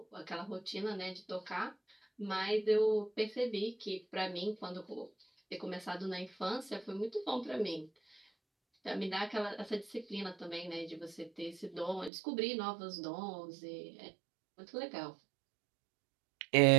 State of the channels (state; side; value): drops out; left; at 12.1 s